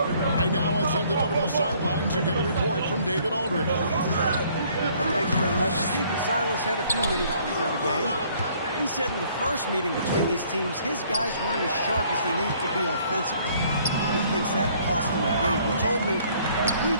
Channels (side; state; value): both; inverted; correlation -0.61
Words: I now will send it over to the sidelines and get a report from David Aldridge. Thanks very much. Stephen Silas had a few minutes before the game. He said in the first meeting between these teams, his guys weren't as sharp as they need to be offensively. He thinks that cost them the game. He told me, if we